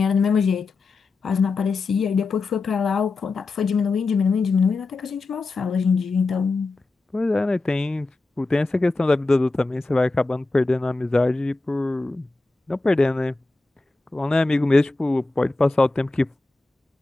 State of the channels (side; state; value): right; quieter; 3.4 dB